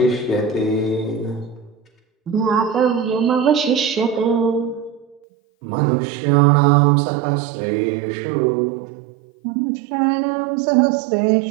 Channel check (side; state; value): left; drops out; at 5.2 s